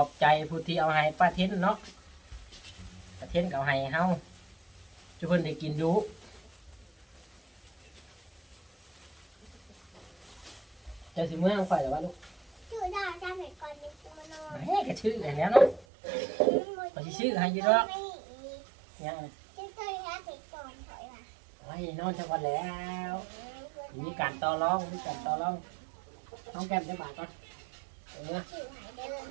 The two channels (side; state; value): left; drops out; at 15.9 s